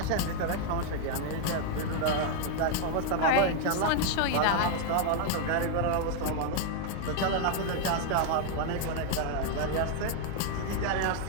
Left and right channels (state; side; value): different; both; correlation 0.00